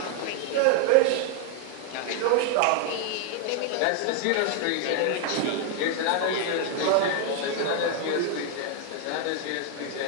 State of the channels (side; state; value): both; different; correlation 0.01